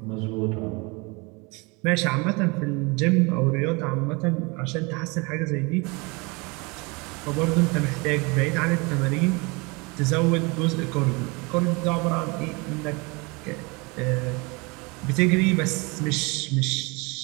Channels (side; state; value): left; quieter; 27.8 dB